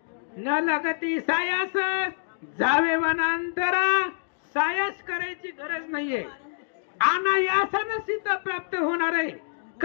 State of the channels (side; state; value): right; silent; digital silence